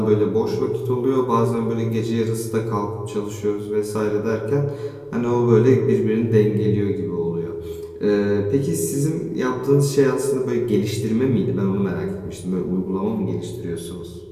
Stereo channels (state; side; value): identical; both; correlation 1.00